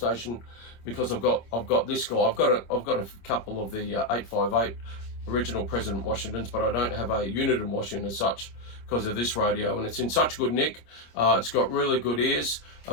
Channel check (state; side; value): late; right; 25 ms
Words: because I've got this guy. I've got a couple of the 858 original President Washingtons, but I don't have a unit in Washington as such because of this radio, and it's in such good nick. It's got really good ears.